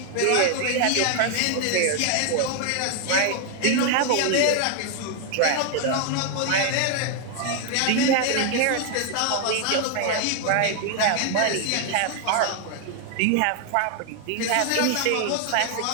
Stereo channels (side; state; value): both; different; correlation 0.00